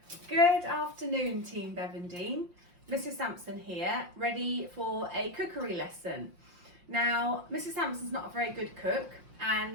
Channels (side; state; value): left; late; 5.7 ms